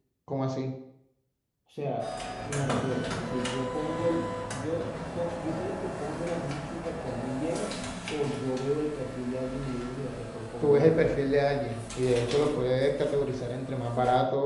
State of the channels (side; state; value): both; identical; correlation 1.00